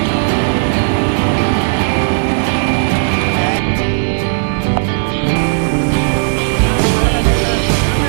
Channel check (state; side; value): silent; left; digital silence